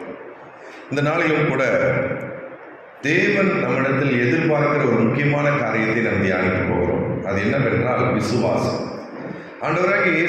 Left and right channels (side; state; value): both; identical; correlation 1.00